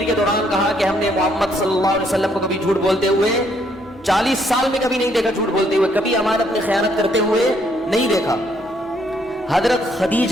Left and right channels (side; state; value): both; normal; correlation 0.70